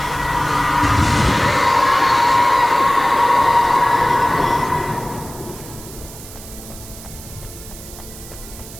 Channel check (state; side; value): noise; right; hiss, 16 dB below the sound